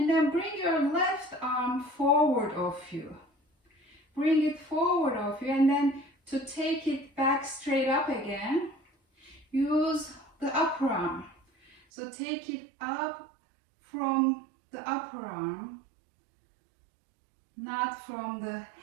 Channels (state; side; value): drops out; left; at 11.8 s